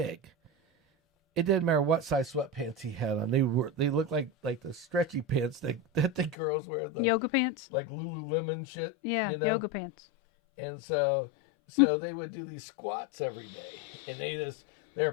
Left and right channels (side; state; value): right; drops out; at 6.4 s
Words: it didn't matter what size sweatpants he had on. They looked like the stretchy pants that the girls wear. The yoga pants? Like Lululemon shit. Yeah, yoga pants. And so they would do these squats every day. And they're